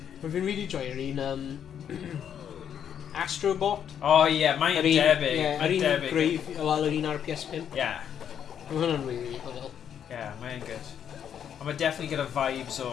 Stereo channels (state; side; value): quieter; right; 8.8 dB